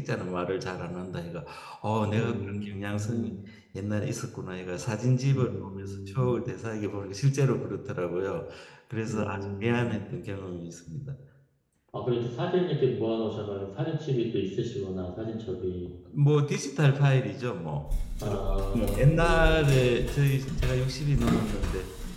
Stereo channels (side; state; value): both; identical; correlation 1.00